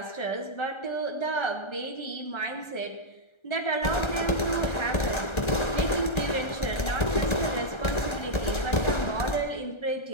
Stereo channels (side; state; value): right; late; 1.3 ms